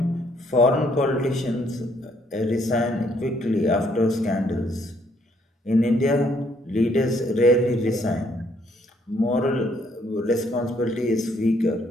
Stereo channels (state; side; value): normal; both; correlation 0.68